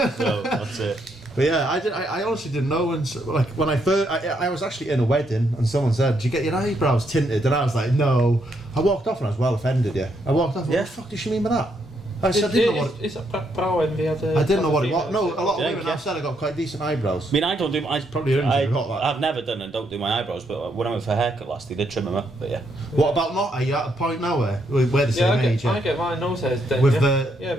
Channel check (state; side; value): normal; both; correlation 0.76